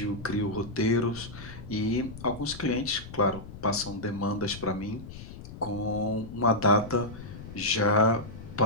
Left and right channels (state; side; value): noise; left; rumble, 13 dB below the sound